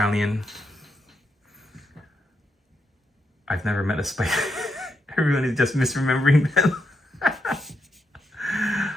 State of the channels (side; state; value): both; normal; correlation 0.81